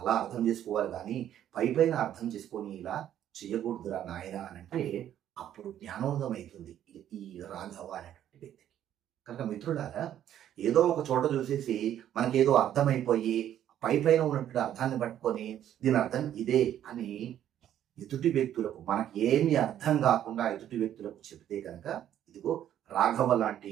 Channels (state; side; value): quieter; left; 11.0 dB